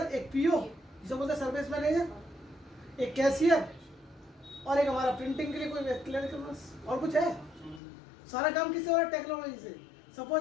एक पीओ जिसे बोलते हैं सर्विस मैनेजर, एक कैशियर, और एक हमारा प्रिंटिंग के लिए कोई व्यक्ति, और कुछ है? सारा काम किससे हो रहा है? टेक्नोलॉजी से।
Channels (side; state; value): right; drops out; at 7.8 s